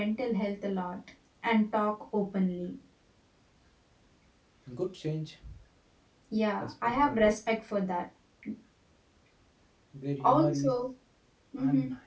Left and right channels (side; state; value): both; identical; correlation 1.00